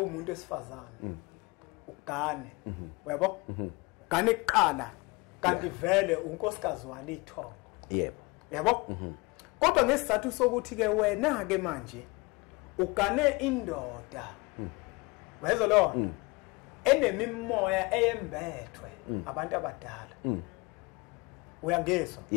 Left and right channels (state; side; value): quieter; right; 26.0 dB